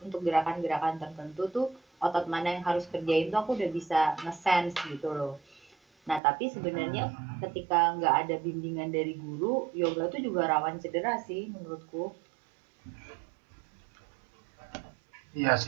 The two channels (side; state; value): left; drops out; at 6.2 s